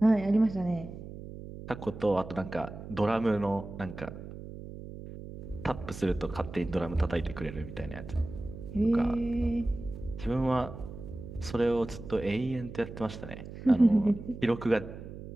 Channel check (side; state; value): right; noise; hum, 12 dB below the sound